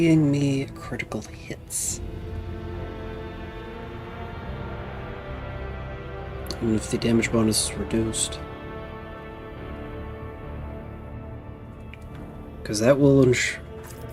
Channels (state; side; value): identical; both; correlation 1.00